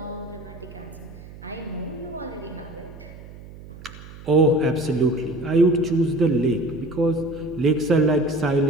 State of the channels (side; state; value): right; noise; hum, 17 dB below the sound